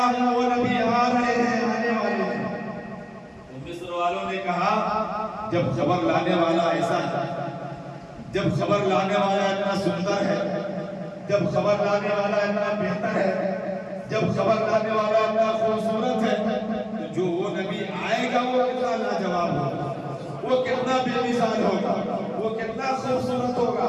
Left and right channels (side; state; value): both; identical; correlation 1.00